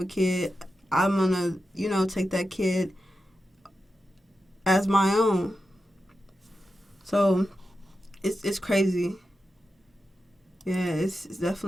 a kid, I'm going to, take that kid as my own. So it's crazy. Yeah, it's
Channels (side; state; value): both; normal; correlation 0.90